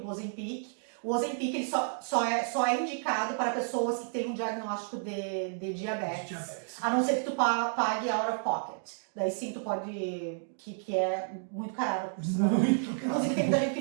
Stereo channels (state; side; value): silent; left; digital silence